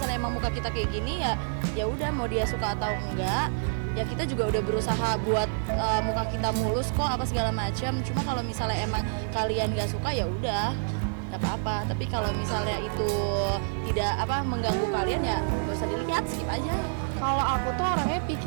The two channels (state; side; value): silent; left; digital silence